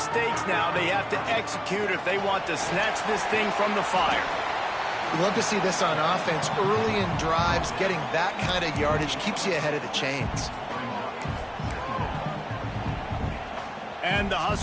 now. They have to execute if they want to snatch this thing from the fire. You love to see this on offense. Early in drives, getting that kind of yardage keeps you ahead of the chains. And the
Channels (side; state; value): both; identical; correlation 1.00